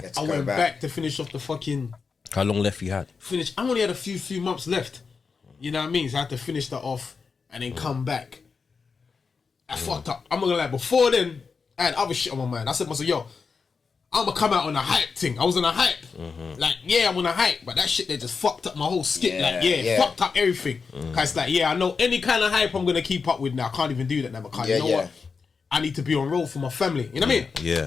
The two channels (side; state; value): right; quieter; 5.2 dB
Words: Let's I go went back to finish off the fucking How long left you had? finish. I only had a few months left. You know what I mean? So I had to finish that off and then come back. I fucked up. I'm not gonna lie. Before then, I had other shit on my mind. I said to myself, yo, I'm gonna come out on a hype thing. I was on a hype. Like, yeah, I'm on a hype, but that shit they just fucked up my whole skit. Fucked up everything. Cause it's like, yeah, I know any kind of hype I'm gonna keep up with now. I can't even do that now because you know what? I need to be on roll for my family. You know what I mean?